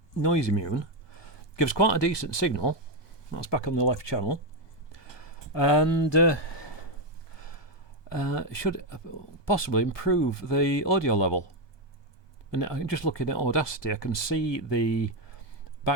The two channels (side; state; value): right; late; 1.2 ms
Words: noise immune, gives quite a decent signal. That's back on the left channel, and should possibly improve the audio level. And just looking at Audacity, I can see the